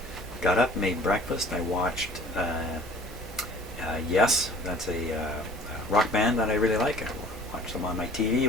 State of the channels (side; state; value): both; normal; correlation 0.50